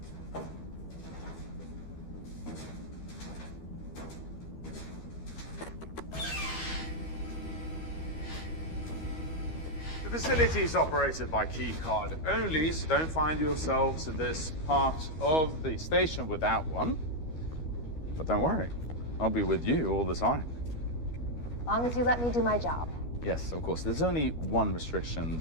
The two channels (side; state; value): right; late; 12 ms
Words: The facility is operated by key card only, so don't find yourselves in this part of the station without one. But don't worry, I'll be with you all the time. As long as you let me do my job. Yes, of course. There's only one restriction